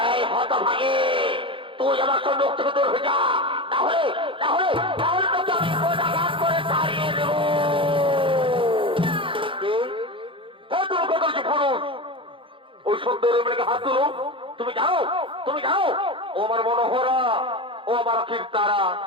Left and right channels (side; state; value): left; late; 0.25 ms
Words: এই হত ভাগে, তুই আমার সঙ্গে মুখ থেকে দূর হয়ে যা, তাহলে তাহলে তাহলে তোকে আমি কোটাঘাত করে তাড়িয়ে দেব। তুমি কত পুরুষ, ওই সুন্দর মেয়েকে হাত তুলো। তুমি জানো ও আমার মনোহরা, ও আমার কীর্তারা,